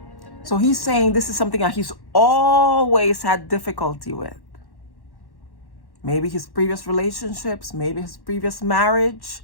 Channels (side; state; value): right; late; 1.1 ms